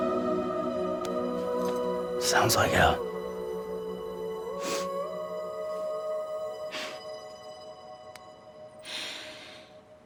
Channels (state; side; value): identical; both; correlation 1.00